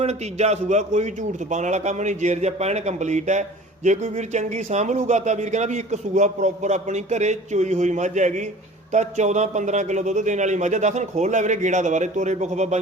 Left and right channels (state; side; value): normal; both; correlation 0.44